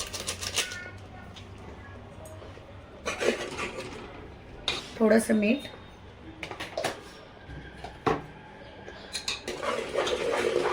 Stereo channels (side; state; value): both; identical; correlation 1.00